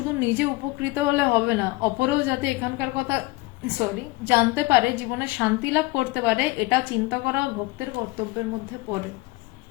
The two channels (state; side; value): quieter; right; 21.5 dB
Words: নিজে উপকৃত হলে হবে না, অপরেও যাতে এখানকার কথা জানতে পারে, জীবনে শান্তি লাভ করতে পারে, এটা চিন্তা করা ভক্তের কর্তব্যের মধ্যে পড়ে।